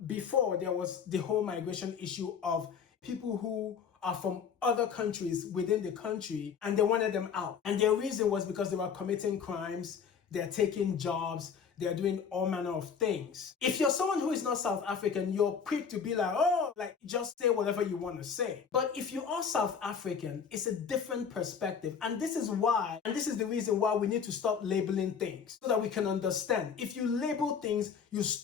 before there was the whole migration issue of people who are from other countries within the country and they wanted them out. And their reason was because they were committing crimes, they're taking jobs, they're doing all manner of things. If you're someone who is not South African, you're quick to be like, oh, like just say whatever you want to say. But if you are South African, it's a different perspective. And this is the reason why we need to stop labeling things so that we can understand. If you label things, you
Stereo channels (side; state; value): right; quieter; 6.8 dB